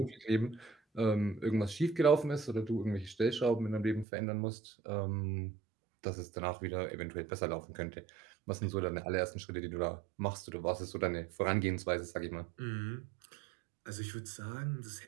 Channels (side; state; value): left; drops out; at 4.0 s